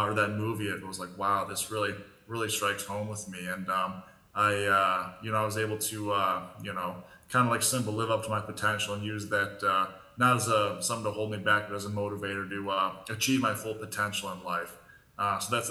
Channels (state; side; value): identical; both; correlation 1.00